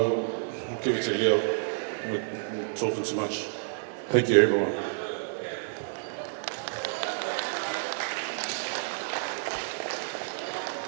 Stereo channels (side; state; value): left; silent; digital silence